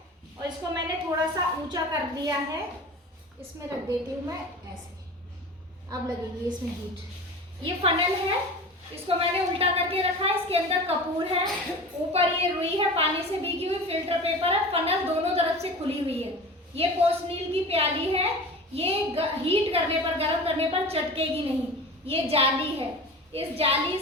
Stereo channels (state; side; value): normal; both; correlation 0.35